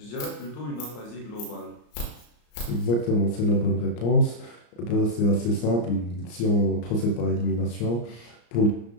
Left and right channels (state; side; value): late; right; 34 ms